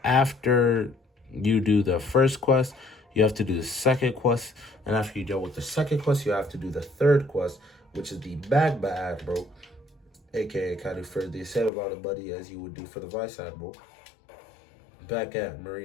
After you do the first quest, you have to do the second quest. And after you deal with the second quest, you have to do the third quest, which is the Magma Admiral, aka kind of for the same amount of money as you would do for the Vice Admiral, back at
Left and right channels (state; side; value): drops out; right; at 11.7 s